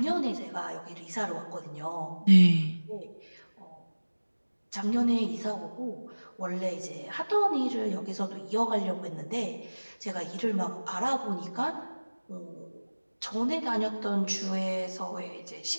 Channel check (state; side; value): inverted; both; correlation -1.00